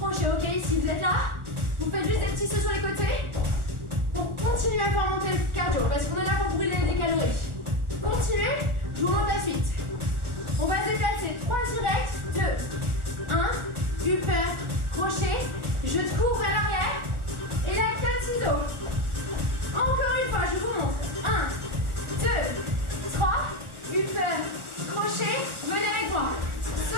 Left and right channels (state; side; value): late; left; 1.4 ms